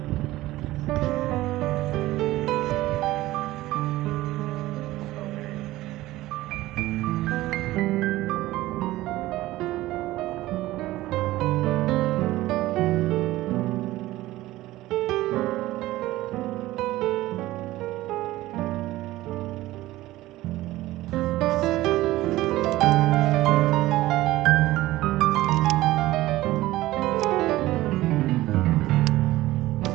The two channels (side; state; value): left; quieter; 16.8 dB